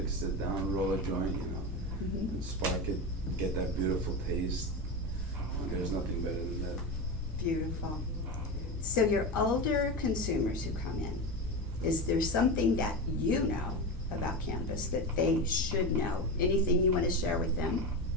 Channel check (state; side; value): normal; both; correlation 0.20